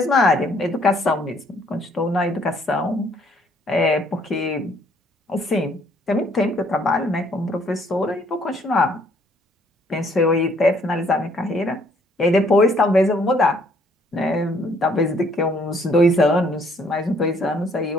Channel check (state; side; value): normal; both; correlation 0.64